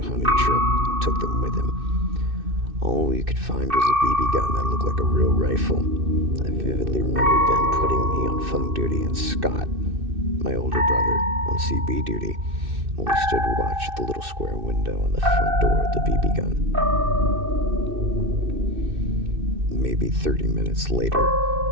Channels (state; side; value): late; left; 2.6 ms